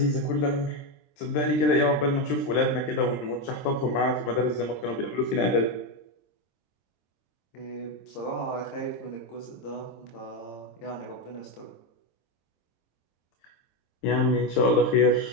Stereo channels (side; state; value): right; late; 23 ms